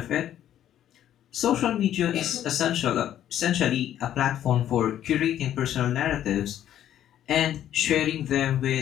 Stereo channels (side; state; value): right; quieter; 11.2 dB